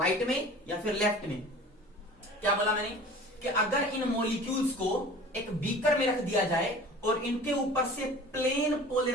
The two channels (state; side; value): normal; both; correlation 0.42